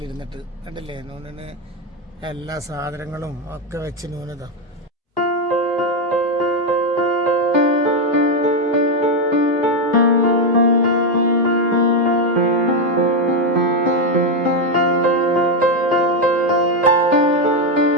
കണ്ടില്ലേ, നൂനിന് എല്ലാ സാധനങ്ങളും ഒക്കെ വെച്ച് നൂനതാ.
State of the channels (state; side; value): normal; both; correlation 0.05